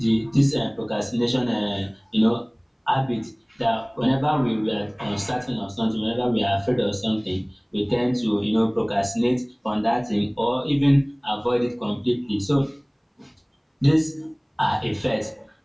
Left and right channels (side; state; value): both; identical; correlation 1.00